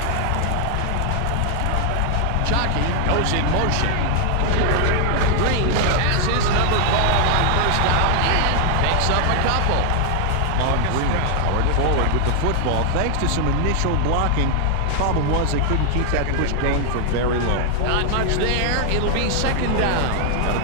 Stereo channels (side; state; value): both; different; correlation 0.00